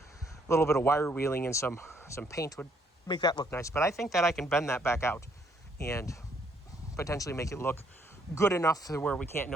wire wheeling and some paint would make that look nice. But I think that I can bend that back out and potentially make it look good enough to where we can't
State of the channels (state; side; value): normal; both; correlation 0.68